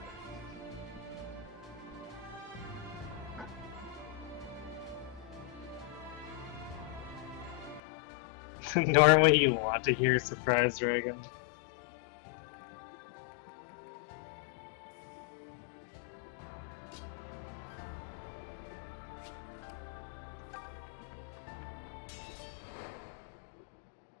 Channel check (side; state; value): right; drops out; at 7.8 s